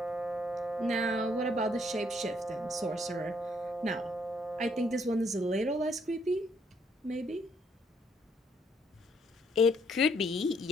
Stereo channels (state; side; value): normal; both; correlation 0.68